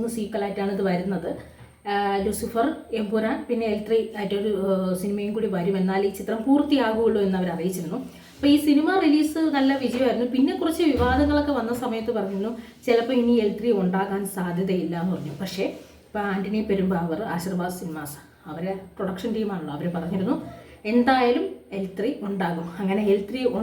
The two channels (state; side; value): identical; both; correlation 1.00